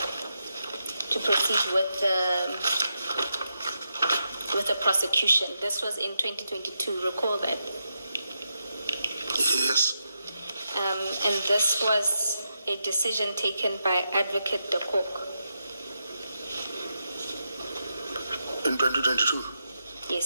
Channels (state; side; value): inverted; both; correlation -0.85